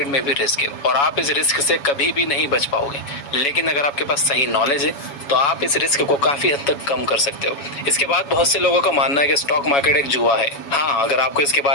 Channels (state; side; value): late; right; 7.1 ms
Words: में भी रिस्क है और आप इस रिस्क से कभी भी नहीं बच पाओगे। लेकिन अगर आपके पास सही नॉलेज है तो आप इस रिस्क को काफी हद तक कम कर सकते हो। इसके बाद बहुत से लोगों का मानना है कि स्टॉक मार्केट एक जुआ है। हाँ, अगर आपको इसके